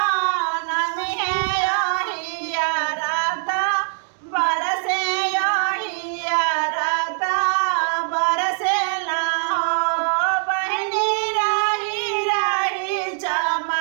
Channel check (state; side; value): silent; left; digital silence